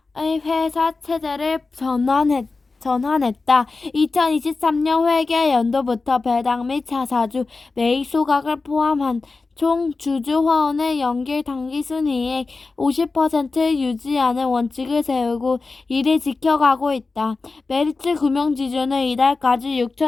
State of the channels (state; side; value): quieter; right; 3.9 dB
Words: 회사 체제를 전환했다. 2023년 회계 연도부터 배당 및 자사주 매입 소각을 포함한 총 주주 화원의 연결 당기순이익 50% 유지하는 원칙을 세우고 이를 지켜가고 있다. 메리츠 금융지주는 이달까지